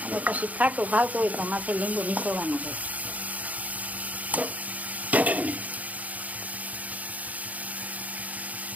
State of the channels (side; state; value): left; late; 0.074 ms